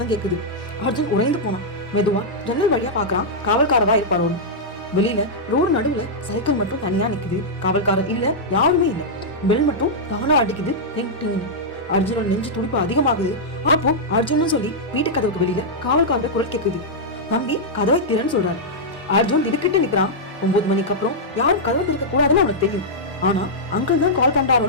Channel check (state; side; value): normal; both; correlation -0.08